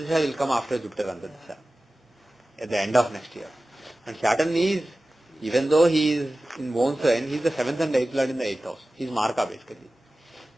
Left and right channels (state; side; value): normal; both; correlation 0.96